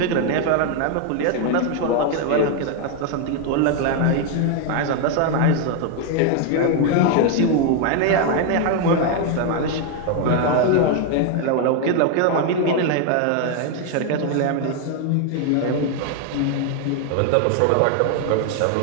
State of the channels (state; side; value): different; both; correlation 0.01